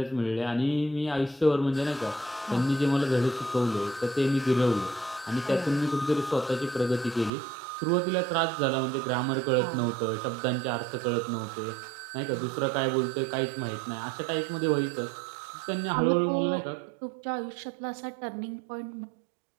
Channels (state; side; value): drops out; left; at 7.3 s